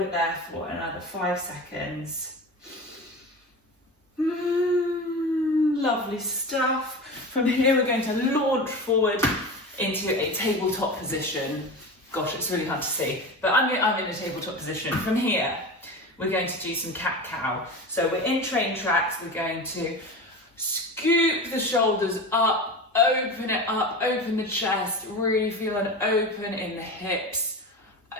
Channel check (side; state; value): both; normal; correlation 0.28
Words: it there for another 5 seconds. Lovely stuff. From here, we're going to launch forward into a tabletop position. Gosh, it's really hard to see, but I'm in a tabletop position. From here, we're going to do some cat-cow. So we're in train tracks. We're going to scoop the shoulders up, open it up, open the chest, really feel an open in the hips.